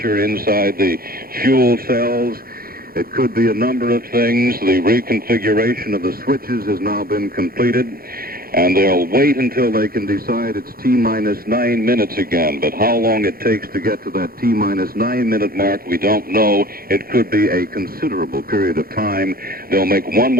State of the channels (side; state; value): left; late; 0.43 ms